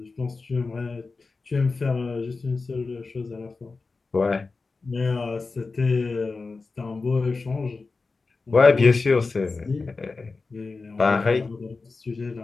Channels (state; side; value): quieter; right; 4.0 dB